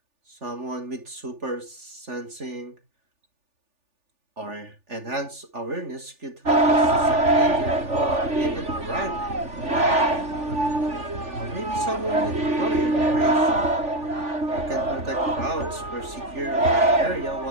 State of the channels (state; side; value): late; left; 3.4 ms